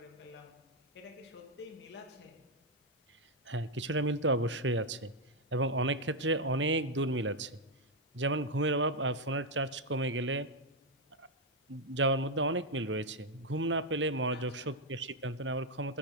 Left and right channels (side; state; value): both; normal; correlation 0.02